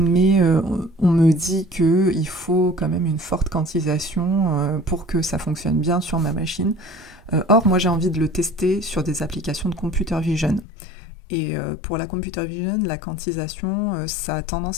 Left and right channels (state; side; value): drops out; right; at 10.7 s